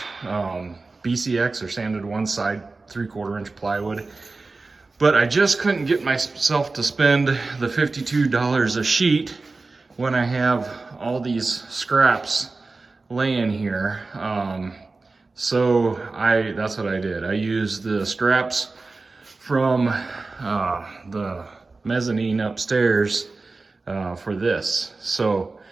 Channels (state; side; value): quieter; left; 3.7 dB